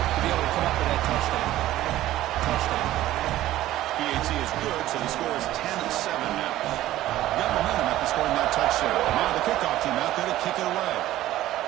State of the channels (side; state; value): left; quieter; 14.6 dB